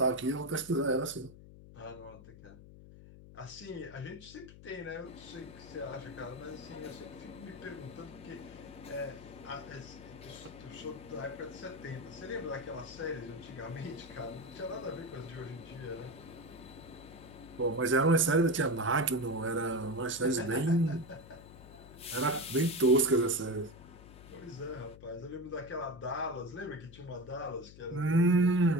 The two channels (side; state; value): left; noise; hum, 18 dB below the sound